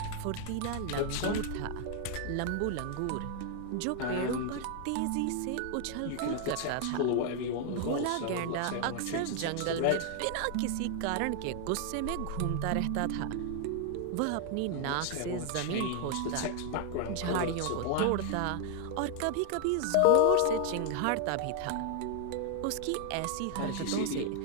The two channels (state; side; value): different; both; correlation 0.00